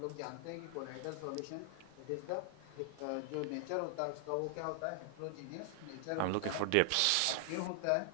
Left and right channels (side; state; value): both; different; correlation 0.00